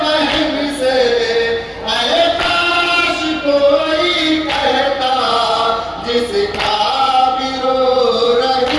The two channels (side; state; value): both; identical; correlation 1.00